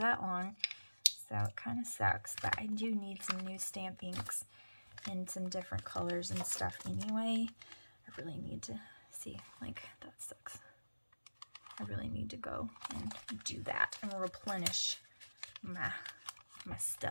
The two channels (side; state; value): both; inverted; correlation -1.00